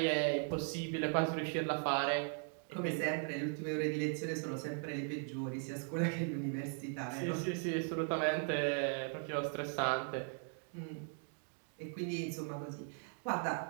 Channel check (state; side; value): silent; left; 52 dB below the other